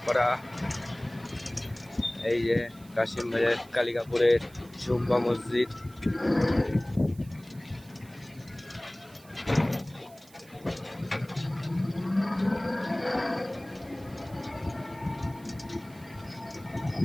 পাড়া, এই যে কাশিম বাজার কালিকাপুরের জুম্বা মসজিদ।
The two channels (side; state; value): right; noise; hiss, 24 dB below the sound